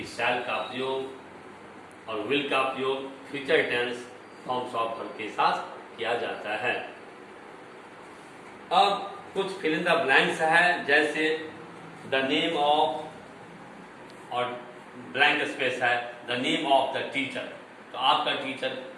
shall का प्रयोग और will का प्रयोग future tense forms of verb के साथ किया जाता है। अब कुछ फिल इन द ब्लैंक्स है, जैसे द नेम ऑफ और ब्लैंक स्पेस है the name of the teacher. तो आपका टीचर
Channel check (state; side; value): identical; both; correlation 1.00